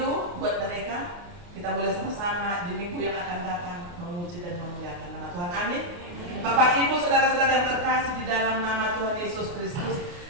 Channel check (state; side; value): late; left; 29 ms